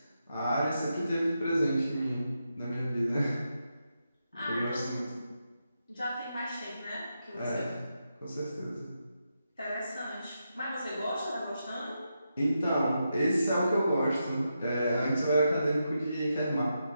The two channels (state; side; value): inverted; both; correlation -0.86